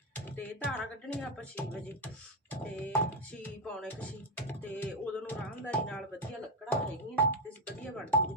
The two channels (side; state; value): both; normal; correlation 0.06